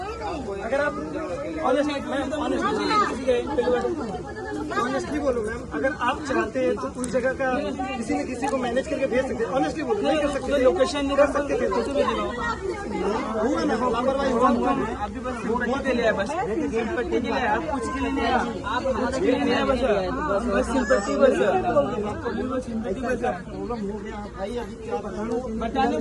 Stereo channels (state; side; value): identical; both; correlation 1.00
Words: अगर आप ऑनेस्टली बोलो मैम अगर आप चाहते हैं तो उस जगह का किसी न किसी को मैनेज करके भेज सकते हैं। ऑनेस्टली बोलो नहीं कर सकते लोकेशन नहीं कर सकते थे लापरवाही हुआ अभी बस सिंपैथी के लिए बस सिंपैथी के लिए आप कुछ के लिए नहीं आप कुछ के लिए नहीं बस सिंपैथी बस सिंपैथी बस प्रॉब्लम हो गया भाई अभी क्या बताने को